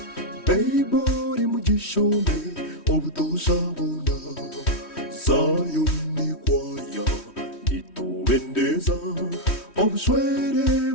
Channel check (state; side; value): late; right; 3.1 ms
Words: 베이버리 무지쇼메 오부도 사보나 사연이 과야 니또 웬데사 obsuere